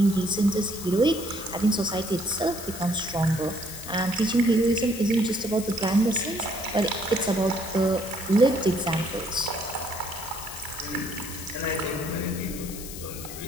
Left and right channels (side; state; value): left; noise; hiss, 11 dB below the sound